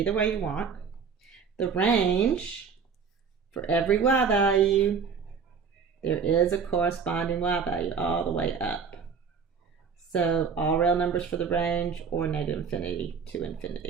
way you want. The range for every y value, there is a corresponding y value all the way up. So all real numbers for the range or negative infinity to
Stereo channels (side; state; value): left; quieter; 6.0 dB